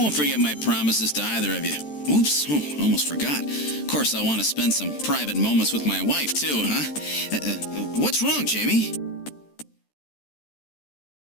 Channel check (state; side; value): late; right; 13 ms